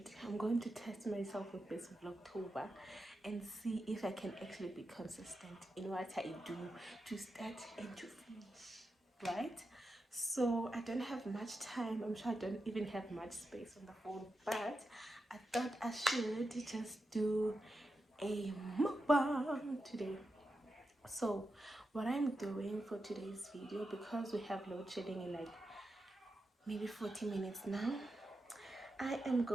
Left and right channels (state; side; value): normal; both; correlation 0.89